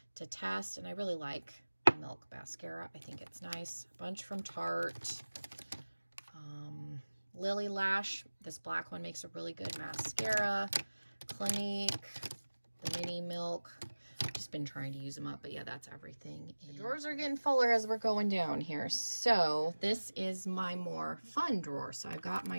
to test, and I really like Milk mascara. I think it's nice. A bunch from Tarte. Lily Lash, this black one makes a really good mascara. Clinique, the Mini Milk. I've just been trying to use them up, but yeah, that's everything. The drawers are getting fuller as we're going down here. So this is my more fun drawer. So I've got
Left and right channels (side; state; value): both; inverted; correlation -1.00